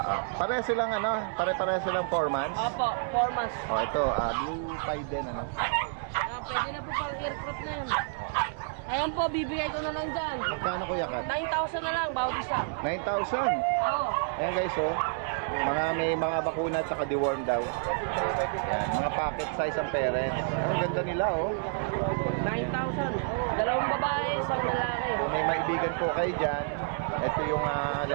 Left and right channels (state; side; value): silent; left; 58 dB below the other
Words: Pare silang pare-pare silang 4 months. Opo, 4 months. Ito, blue pied din, Pwede na po pang aircraft na yan. Ayan po, bibigay ko na lang dyan. Magkano Kuya Kat? 9,000 na lang, bawat isa. 9,000. Oo. Ayan guys, oh. May mga bakuna at saka deworm daw. Ayan, mga pocket size ang parents. Ang ganda nila, oh. 9,000. Dalawang babae, isang lalaki. Kung may maibigan po kayo dyan, ito yung